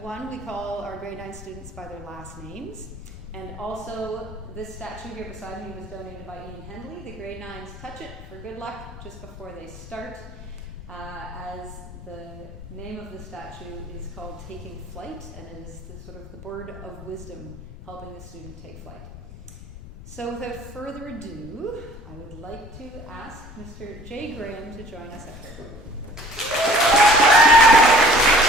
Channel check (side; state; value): left; noise; rumble, 15 dB below the sound